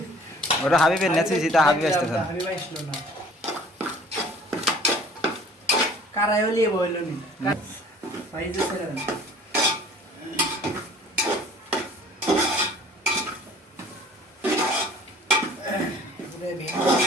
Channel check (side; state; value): both; normal; correlation 0.50